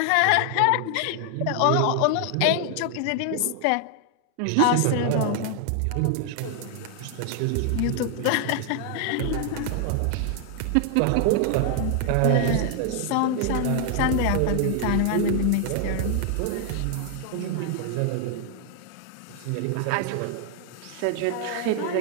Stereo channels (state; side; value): different; both; correlation 0.00